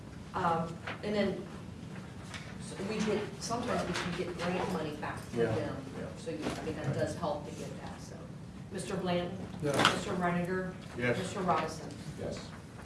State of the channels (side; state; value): both; identical; correlation 1.00